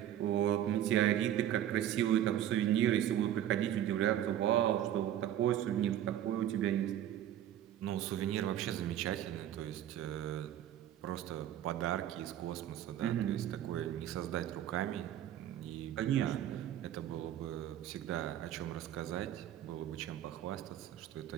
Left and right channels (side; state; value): left; quieter; 11.5 dB